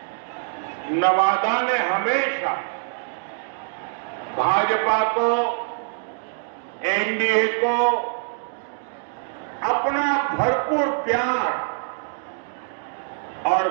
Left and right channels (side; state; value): left; silent; digital silence